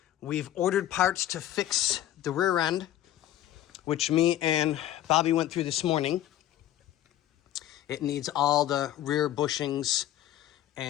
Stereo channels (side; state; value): right; quieter; 12.9 dB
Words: We've ordered parts to fix the rear end, which me and Bobby went through this morning. It needs all the rear bushings